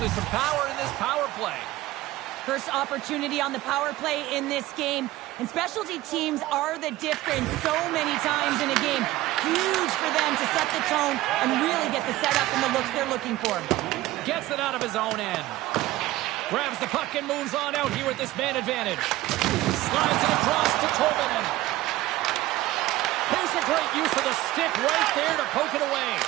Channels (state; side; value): quieter; left; 16.7 dB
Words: some power in this power play. First opportunity on the power play in this game, and specialty teams are the difference so many times in a game. Huge for them to set the tone and really get the setup and the looks they're looking for. Gets it out of his own end. Grabs the puck and moves on out here with this man advantage. Slides it across to Tolvanen. Here's a great use of the stick right there to poke it away.